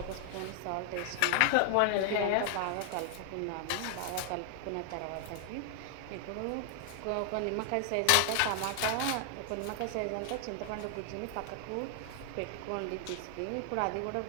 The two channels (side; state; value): both; different; correlation 0.00